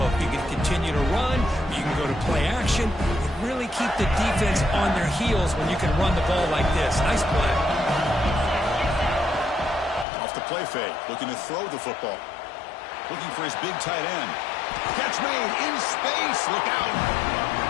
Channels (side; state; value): right; drops out; at 10.1 s